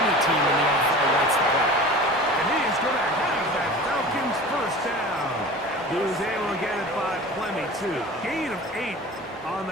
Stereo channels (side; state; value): both; normal; correlation 0.38